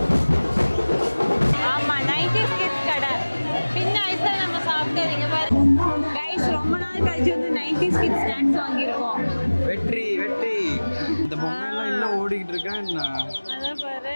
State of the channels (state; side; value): inverted; both; correlation -1.00